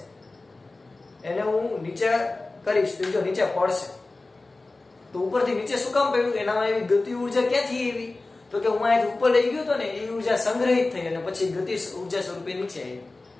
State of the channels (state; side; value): quieter; right; 3.3 dB